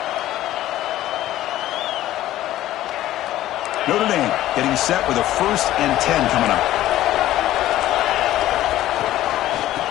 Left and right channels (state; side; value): quieter; right; 14.2 dB